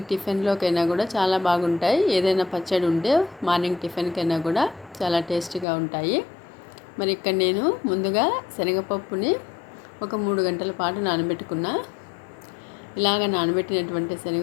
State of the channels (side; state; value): right; drops out; at 5.7 s